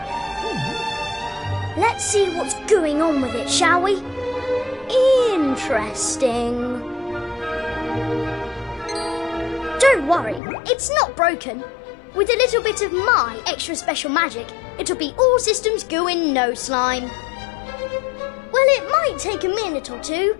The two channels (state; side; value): drops out; right; at 10.4 s